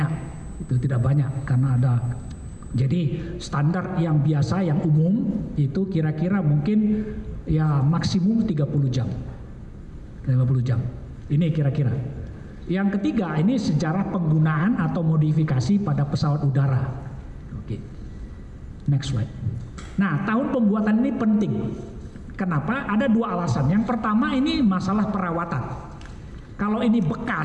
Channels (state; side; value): identical; both; correlation 1.00